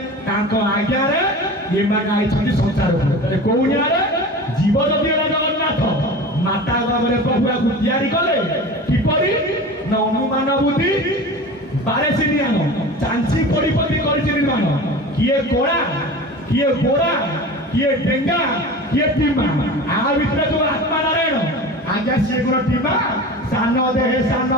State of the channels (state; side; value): normal; both; correlation 0.34